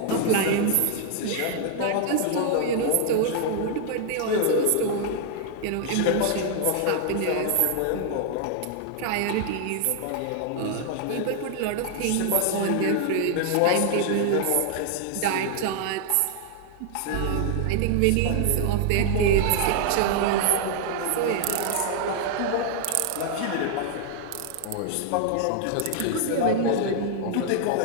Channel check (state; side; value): different; both; correlation 0.00